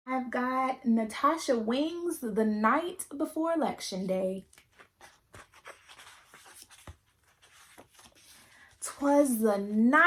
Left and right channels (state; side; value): identical; both; correlation 1.00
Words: I've got Natasha Wings, the night before Election Day. 'Twas the